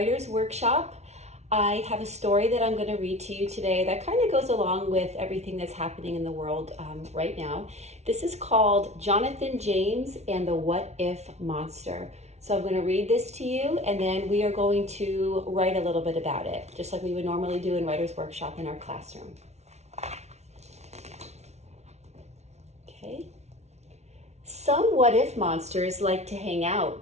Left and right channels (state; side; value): late; left; 0.32 ms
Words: Workshop. I have a story that I'm going to read to you today that kind of goes along with everything that's happening in the world right now. This is called Jonathan James and the Whatif Monster. So I'm going to read this to you and then we are going to write a little bit about it, just like we would normally do in Writer's Workshop in our classroom. Okay. Some what-if monsters like to hang